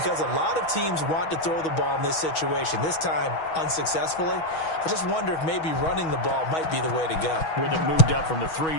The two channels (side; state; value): right; late; 6.2 ms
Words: a lot of teams want to throw the ball in this situation, this time unsuccessfully. I just wonder if maybe running the ball might be the way to go. With it moved up from the 3